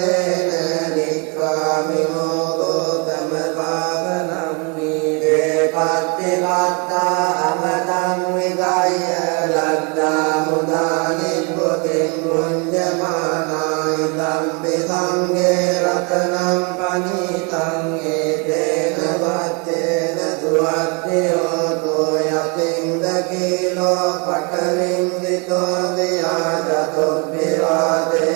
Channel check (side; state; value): left; quieter; 33.2 dB